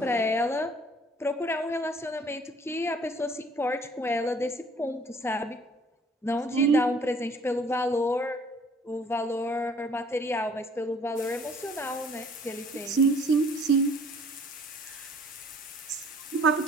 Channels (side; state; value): both; normal; correlation 0.56